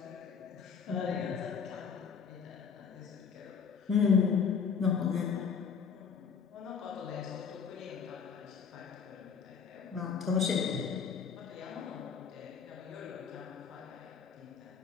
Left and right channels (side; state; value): right; quieter; 6.3 dB